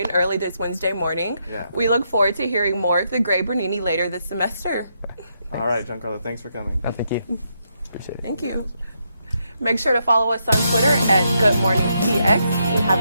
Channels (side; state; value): both; inverted; correlation -0.79